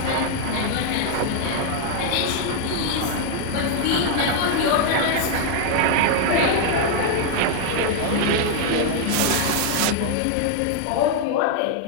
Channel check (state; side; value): different; both; correlation 0.00